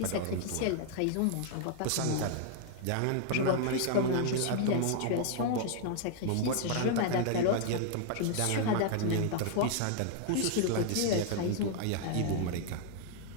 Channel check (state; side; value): different; both; correlation -0.01